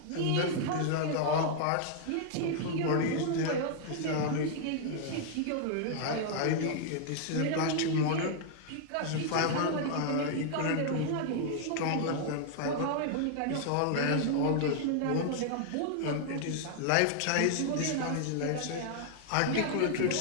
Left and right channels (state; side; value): different; both; correlation -0.01